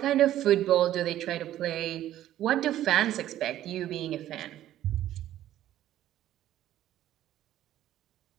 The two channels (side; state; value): left; quieter; 12.8 dB